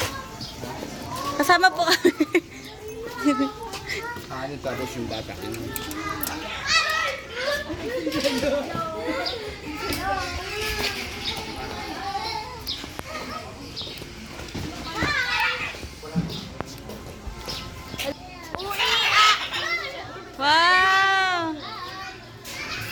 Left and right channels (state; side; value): identical; both; correlation 1.00